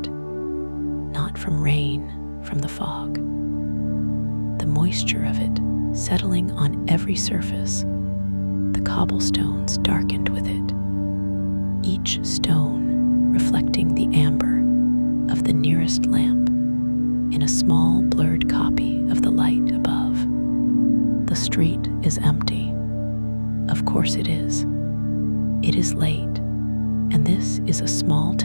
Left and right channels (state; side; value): inverted; both; correlation -1.00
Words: not from rain, from the fog. The moisture of it settling on every surface, the cobblestones darkened with it, each stone reflecting the amber of the nearest lamp in a small blurred copy of the light above. The street is empty. Of course it is. It is late, and this is a small